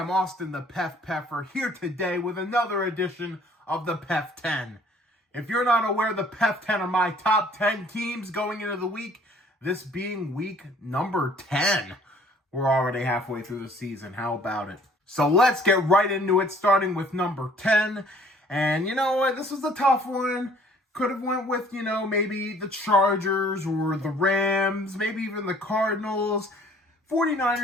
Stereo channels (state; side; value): normal; both; correlation 0.56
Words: Austin the PEF Peffer here today with another edition of the PEF 10. If you're not aware, the PEF 10 are my top 10 teams going into the week, this being week number 10. We're already halfway through the season. How about it? So let's get right into it, starting with number 10. And you know what? This was a tough one. Could have went with, maybe the Chargers or the Rams, maybe even the Cardinals.